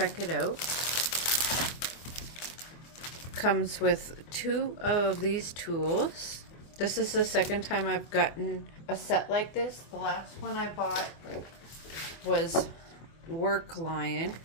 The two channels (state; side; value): late; right; 24 ms